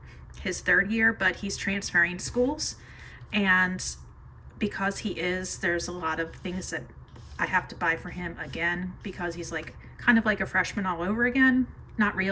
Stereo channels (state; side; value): identical; both; correlation 1.00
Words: his 3rd year, but he's transferring schools. And because there's a lot of things that I have to buy for him again, because he's like kind of like a freshman all over again. Not